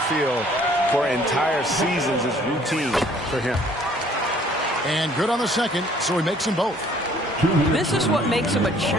field for entire seasons is routine for him. And good on the second, so he makes them both. This is what makes him a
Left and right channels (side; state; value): both; normal; correlation 0.58